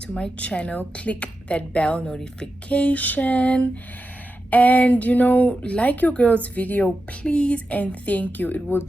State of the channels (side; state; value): both; normal; correlation 0.90